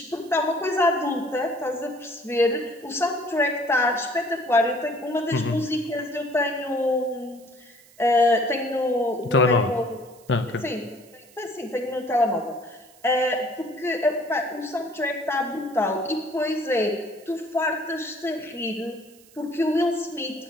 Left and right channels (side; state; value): right; noise; hiss, 26 dB below the sound